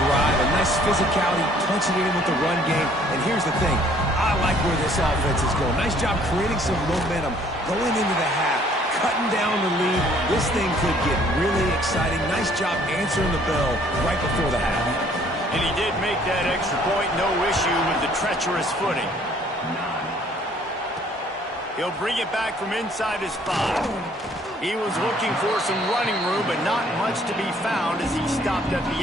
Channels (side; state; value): both; normal; correlation 0.60